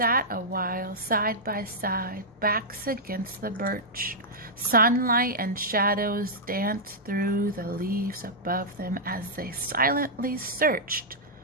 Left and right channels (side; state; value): both; normal; correlation -0.08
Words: a while side by side, backs against the birch. Sunlight and shadows danced through the leaves above them as they silently searched